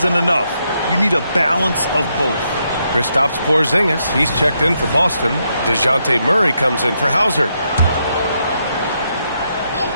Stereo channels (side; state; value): both; inverted; correlation -0.79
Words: enough. You need a balance of both. Kristaps Porzingis, he's checked in for Boston. DeJounte Murray comes in for Hauser.